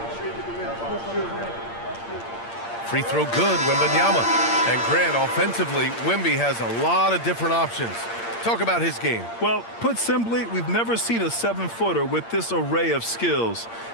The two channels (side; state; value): right; late; 8.7 ms